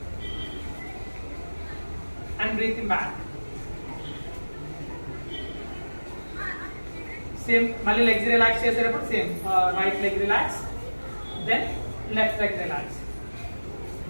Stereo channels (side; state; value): both; inverted; correlation -1.00